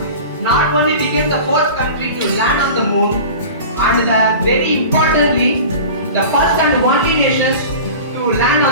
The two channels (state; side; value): inverted; both; correlation -0.37